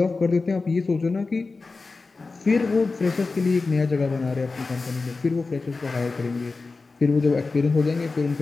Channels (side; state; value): right; quieter; 3.9 dB